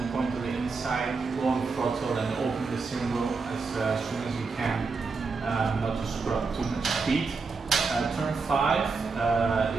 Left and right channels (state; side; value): quieter; left; 4.5 dB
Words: point to the inside, go on throttle and open the steering wheel as soon as you can, not to screw up too much speed. Turn 5